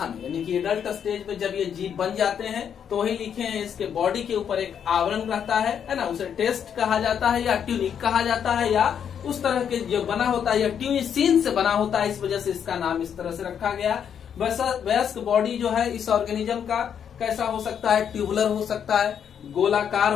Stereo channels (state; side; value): quieter; right; 8.2 dB